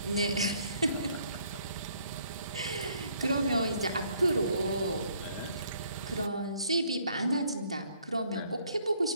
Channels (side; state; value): both; inverted; correlation -0.65